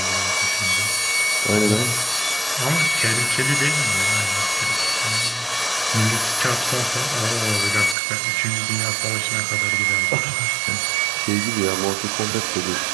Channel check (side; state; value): left; drops out; at 8.0 s